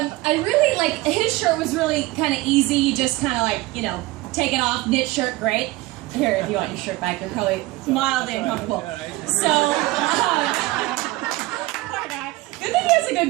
I really his shirt was really kind of easy, just kind of take it off, knit shirt, great. Here, if you want your shirt back, you're probably mildly uncomfortable. So, good thing he has a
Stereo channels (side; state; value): left; quieter; 19.8 dB